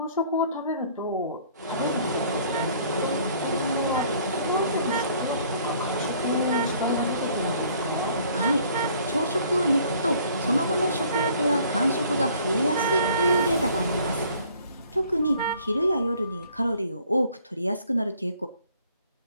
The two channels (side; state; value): both; inverted; correlation -0.58